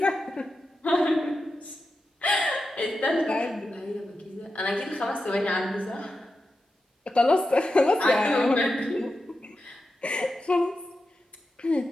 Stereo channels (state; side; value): normal; both; correlation 0.90